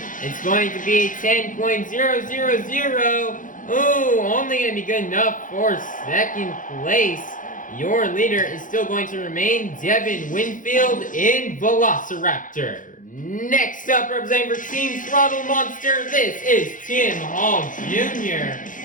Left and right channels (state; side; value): late; right; 0.38 ms